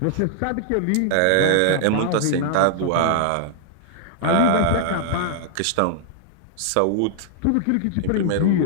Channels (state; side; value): different; both; correlation -0.01